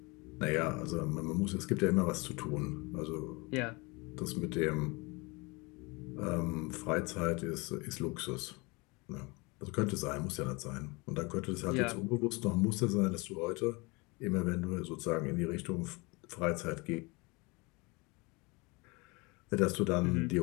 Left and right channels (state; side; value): quieter; right; 26.9 dB